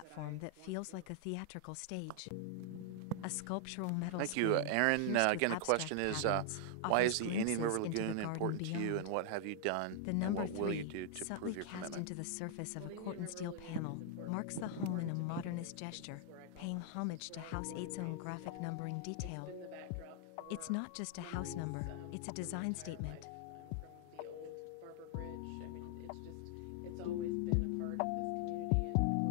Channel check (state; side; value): different; both; correlation 0.00